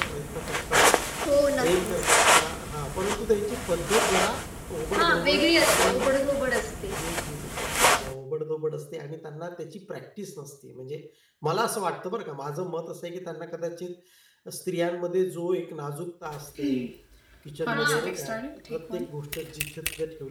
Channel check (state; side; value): identical; both; correlation 1.00